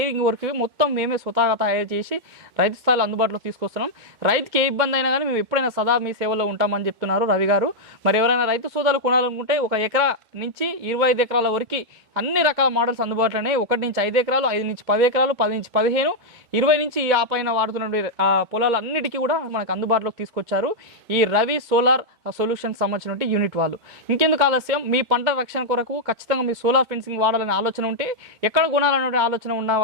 వరకు మొత్తం మేమే స్వతహాగా తయారు చేసి రైతు స్థాయిలో అందుబాటులో తీసుకొస్తున్నాం. రైతుకి ఏ ఇబ్బంది అయినా కానీ మేము ఎప్పుడైనా సదా మీ సేవలో ఉంటామని చెప్తున్నారు రవి గారు. మరి ఎవరైనా రైతు సోదరులు కొనాలనుకుంటే 1 ఎకరా నుంచి 25 ఎకరాల వరకు అన్ని రకాల మోడల్స్ అందుబాటులోనే 1 నుంచి 5 ఎకరాలు, 5 నుంచి 10 ఎకరాలు, 10 నుంచి 15, 20 నుంచి ఆ పైన వాడుతున్న పొలాలు అన్నిటికీ కూడా మనకు అందుబాటులోకి తీసుకొచ్చారు ఈ రవి సోలార్ సొల్యూషన్ సంబంధించిన యూనిట్ వాళ్ళు. ఇంకెందుకు ఆలస్యం, మీ పంట రక్షణ కొరకు ఖచ్చితంగా మీ సోలార్ ఫెన్సింగ్ వాడాలనే ఆలోచన ఉంటే, ఎక్కడ కొనాలనే ఆలోచన ఉన్న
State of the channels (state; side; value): late; left; 2.2 ms